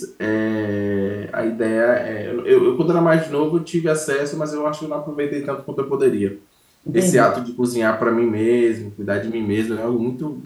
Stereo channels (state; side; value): identical; both; correlation 1.00